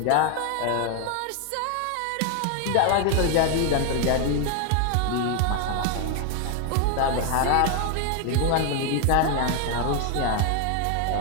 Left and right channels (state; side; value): different; both; correlation 0.01